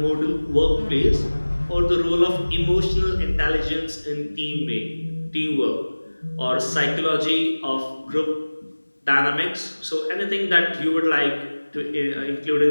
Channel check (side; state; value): both; inverted; correlation -1.00